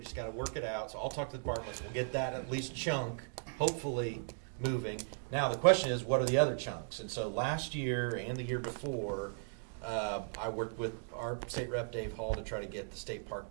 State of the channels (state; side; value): silent; left; digital silence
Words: just gotta work it out. So I'll talk to the departments. We'll get that at least chunk, hopefully moving. Now the question is, what are the other chunks? And so last year and the year before, I worked with our state rep Dave Hall to try to get the state park